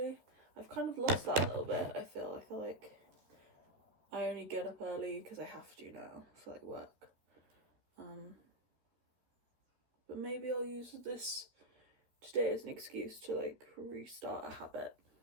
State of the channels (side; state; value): left; late; 13 ms